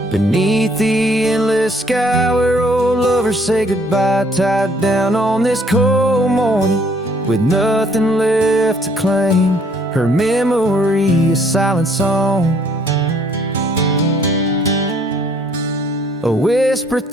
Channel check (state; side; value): normal; both; correlation 0.63